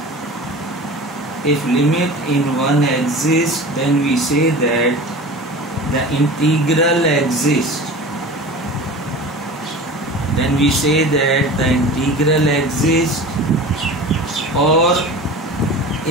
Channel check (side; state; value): both; normal; correlation 0.35